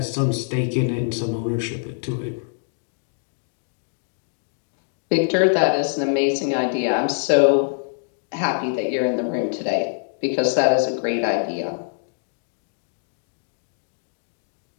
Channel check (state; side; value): silent; right; digital silence